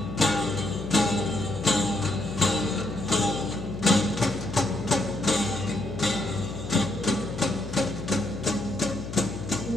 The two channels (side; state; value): left; noise; hum, 9 dB below the sound